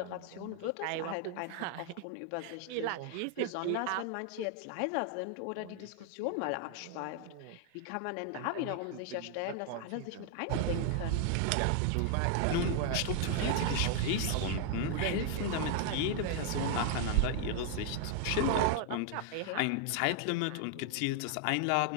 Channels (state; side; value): different; both; correlation 0.00